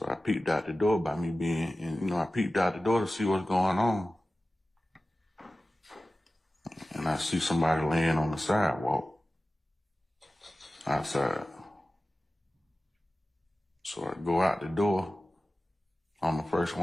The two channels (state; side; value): normal; both; correlation 0.95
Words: I peeped out the door by me being, and I peeped out the door to see what's going on. And I see somebody laying on the sidewalk outside. So I go out the door. I'm the first